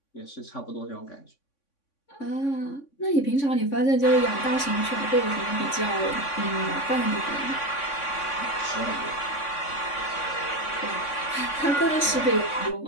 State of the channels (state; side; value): late; right; 3.5 ms